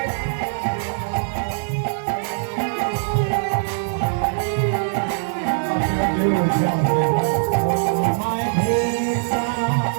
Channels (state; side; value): silent; left; digital silence